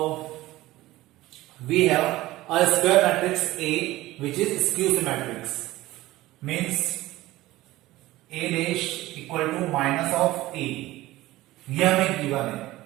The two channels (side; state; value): left; quieter; 17.4 dB